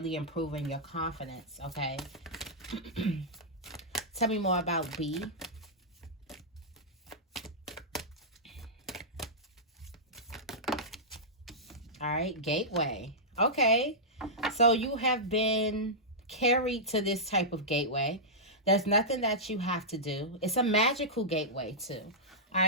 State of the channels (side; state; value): both; normal; correlation -0.12